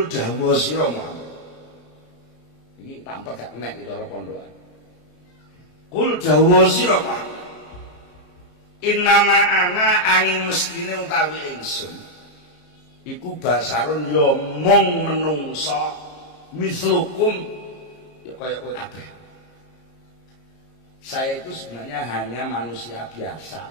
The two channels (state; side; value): late; right; 34 ms